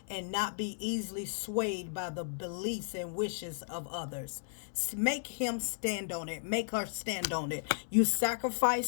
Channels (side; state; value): right; silent; 55 dB below the other